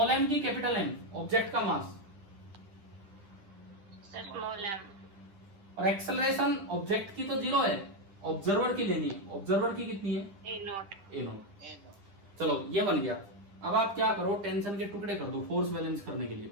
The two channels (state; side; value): late; left; 9.9 ms